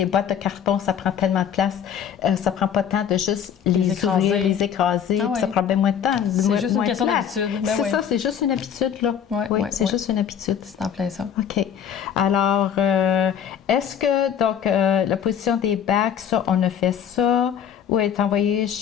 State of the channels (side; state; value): right; quieter; 8.5 dB